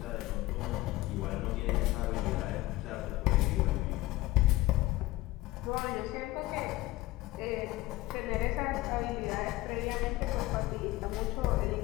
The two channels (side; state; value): right; quieter; 18.4 dB